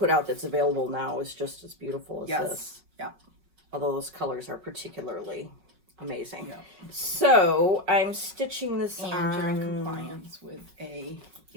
out that's available now is just as beautiful as Yes. this. Yeah. Although those colors are particularly amazing. Yeah. So I'm stitching this And on... you're in compliance with a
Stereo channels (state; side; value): late; left; 5.4 ms